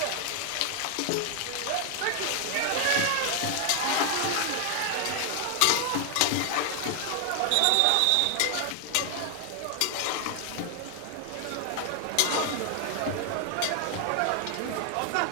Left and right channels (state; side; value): different; both; correlation 0.00